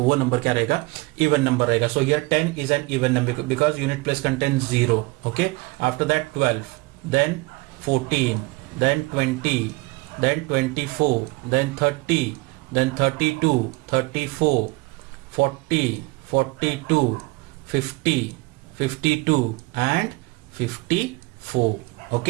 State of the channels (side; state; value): left; quieter; 23.4 dB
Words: वो number क्या रहेगा? Even number रहेगा. So here 10 is an even number because unit place contains 0. Okay. After that 12, then 14, then 20, then 24, then 30, then 32, 34, 40, 42, 50, 52 and 54.